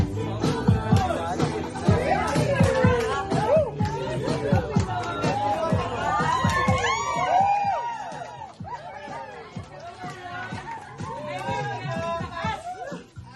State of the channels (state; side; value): identical; both; correlation 1.00